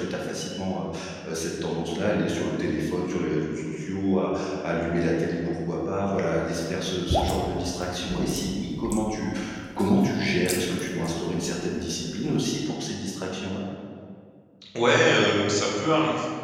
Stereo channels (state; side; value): identical; both; correlation 1.00